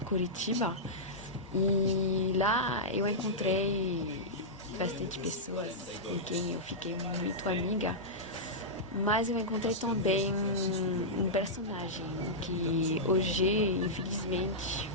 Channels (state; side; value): normal; both; correlation -0.11